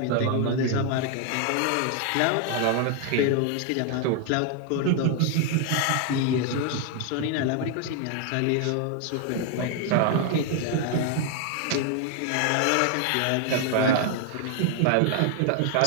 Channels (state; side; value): different; both; correlation 0.00